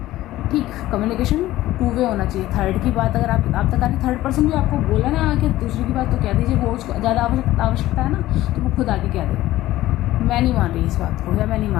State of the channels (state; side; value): quieter; right; 15.7 dB